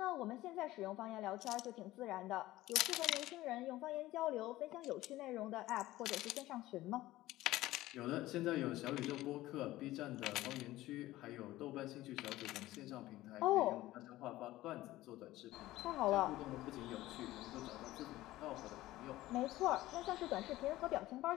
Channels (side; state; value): right; quieter; 16.5 dB